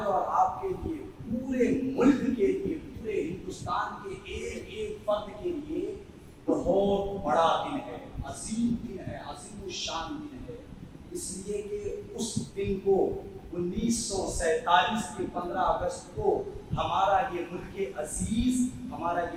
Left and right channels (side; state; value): both; identical; correlation 1.00